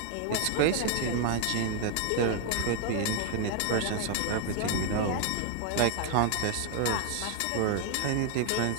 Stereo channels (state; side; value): different; both; correlation 0.00